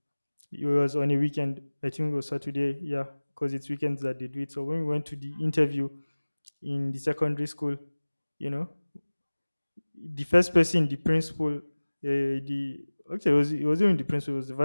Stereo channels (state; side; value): inverted; both; correlation -1.00